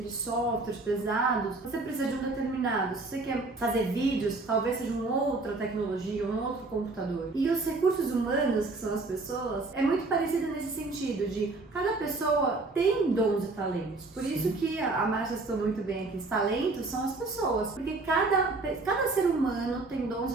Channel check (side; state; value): left; quieter; 3.4 dB